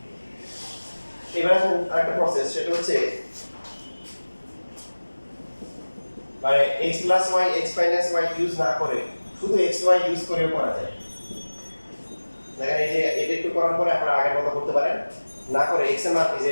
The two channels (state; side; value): inverted; both; correlation -1.00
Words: এবার আসুন আরেকটা প্রসেস সেটা হচ্ছে মানে x plus y x minus y use না করে শুধু x y ইউজ করেও করা যায় দেখেন এই যে এটা একটু করার পরে আপনারা আগের মতো করতে পারেন না করে x এর মান এই যে